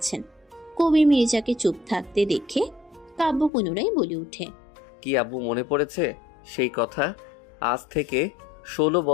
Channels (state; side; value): drops out; right; at 3.5 s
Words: কবির মির্জাকে চুপ থাকতে দেখে কাব্য পুনরায় বলে ওঠে, কি আব্বু মনে পড়েছে সেই কথা? আজ থেকে 16